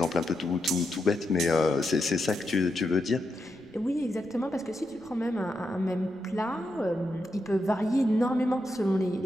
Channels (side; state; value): left; noise; rumble, 29 dB below the sound